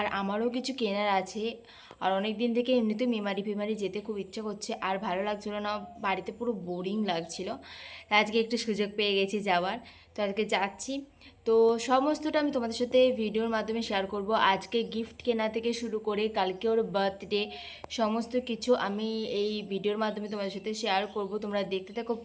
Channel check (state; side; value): identical; both; correlation 1.00